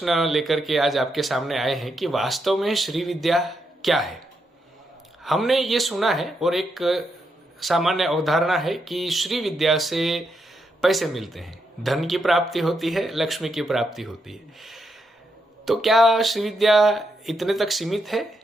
लेकर के आज आपके सामने आए हैं कि वास्तव में श्री विद्या क्या है। हमने ये सुना है और एक सामान्य अवधारणा है कि श्री विद्या से पैसे मिलते हैं, धन की प्राप्ति होती है, लक्ष्मी की प्राप्ति होती है। तो क्या श्री विद्या इतने तक सीमित है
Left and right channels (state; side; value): normal; both; correlation 0.81